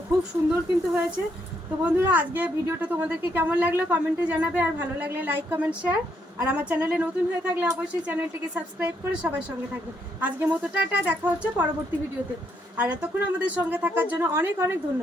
খুব সুন্দর কিন্তু হয়েছে। তো বন্ধুরা আজকে ভিডিওটা তোমাদেরকে কেমন লাগলো কমেন্টে জানাবে, আর ভালো লাগলে লাইক কমেন্ট শেয়ার, আর আমার চ্যানেলে নতুন হয়ে থাকলে অবশ্যই চ্যানেলটিকে সাবস্ক্রাইব করে সবার সঙ্গে থাকবে। আজকের মতো টাটা, দেখা হচ্ছে পরবর্তী ভিডিওতে। আর এতক্ষণ আমাদের সঙ্গে থাকার জন্য অনেক অনেক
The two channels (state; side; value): normal; both; correlation 0.74